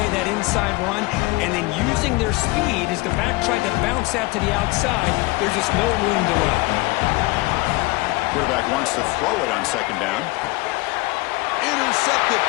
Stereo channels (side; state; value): right; quieter; 22.9 dB